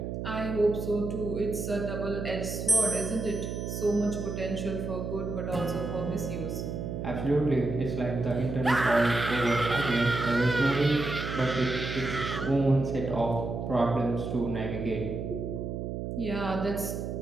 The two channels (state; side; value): noise; right; hum, 5 dB below the sound